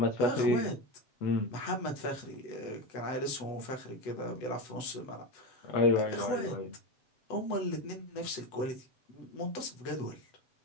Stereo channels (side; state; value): right; late; 8.0 ms